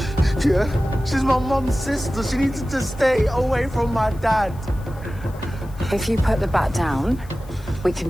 Yeah, she's my mum's sister. She needs to stay away from my dad. If you put the bat down, we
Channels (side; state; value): left; noise; hiss, 26 dB below the sound